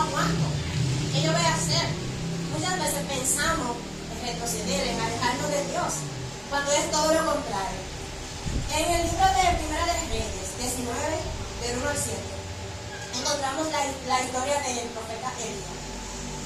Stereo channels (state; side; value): identical; both; correlation 1.00